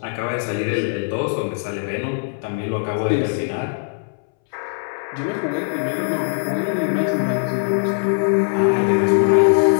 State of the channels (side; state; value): right; silent; 63 dB below the other